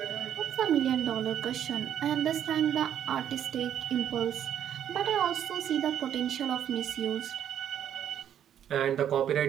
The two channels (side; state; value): left; quieter; 10.0 dB